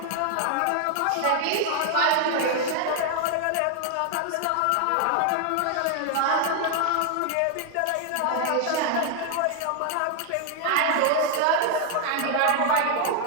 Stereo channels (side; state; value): both; different; correlation 0.00